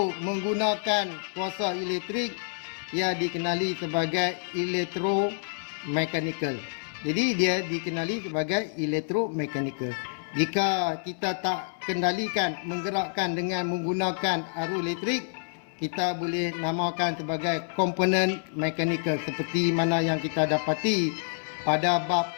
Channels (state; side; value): silent; right; 59 dB below the other